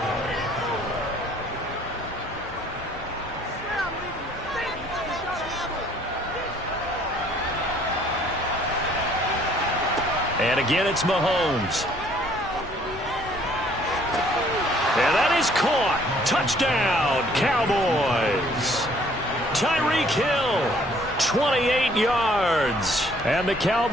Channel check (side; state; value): both; normal; correlation 0.60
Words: And again, it's Mahomes. And that is caught. Touchdown, Cowboys. Tyreek Hill, 28 yards. And the